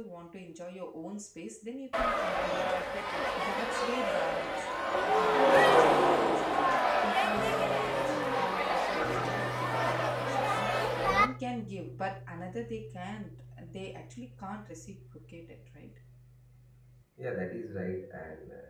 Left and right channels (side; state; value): both; identical; correlation 1.00